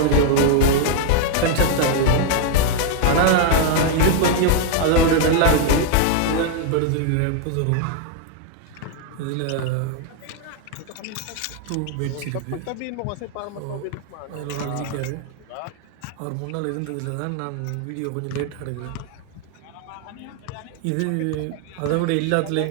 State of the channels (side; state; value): both; different; correlation 0.00